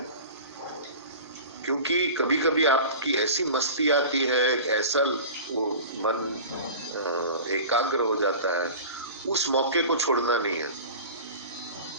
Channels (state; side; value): inverted; both; correlation -0.36